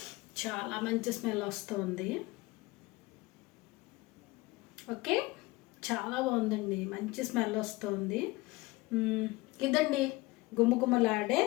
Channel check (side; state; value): right; quieter; 21.5 dB